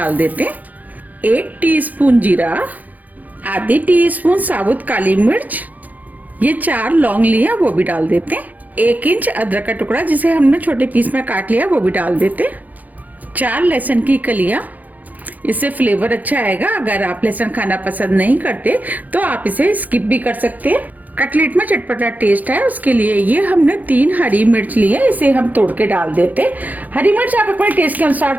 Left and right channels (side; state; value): left; late; 0.080 ms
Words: देते हैं, 1 टीस्पून जीरा, आधी टीस्पून साबुत काली मिर्च, ये 4 लौंग लिया वो भी डाल देते हैं, 1 इंच अदरक का टुकड़ा जिसे हमने छोटे पीस में काट लिया वो भी डाल देते हैं, 4 लहसुन की कलियां, इससे फ्लेवर अच्छा आएगा। अगर आप लहसुन खाना पसंद नहीं करते तो आप इसे स्किप भी कर सकते हैं। कटलेट में चटपटा टेस्ट है, उसके लिए ये हमने 3 हरी मिर्च ली है, इसे हम तोड़ के डाल देते हैं। हरी मिर्च आप अपने टेस्ट के